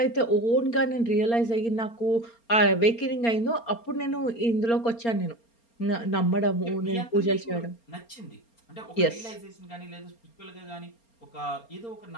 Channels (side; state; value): right; late; 4.3 ms